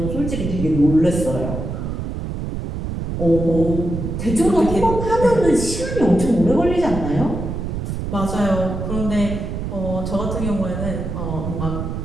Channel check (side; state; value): right; noise; rumble, 4 dB below the sound